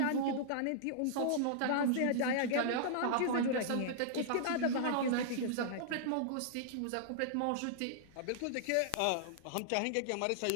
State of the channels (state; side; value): different; both; correlation -0.01